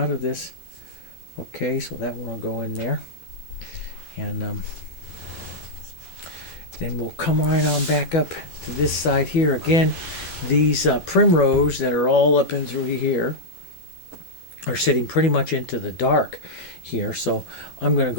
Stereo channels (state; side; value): late; right; 11 ms